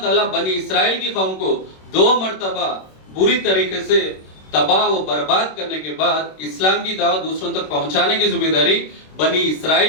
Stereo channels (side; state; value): right; late; 26 ms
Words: تعالیٰ بنی اسرائیل کی قوم کو 2 مرتبہ بری طریقے سے تباہ و برباد کرنے کے بعد اسلام کی دعوت دوسروں تک پہنچانے کی ذمہ داری بنی